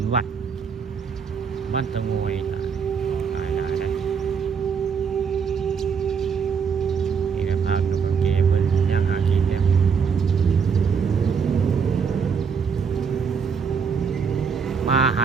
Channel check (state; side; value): quieter; left; 6.2 dB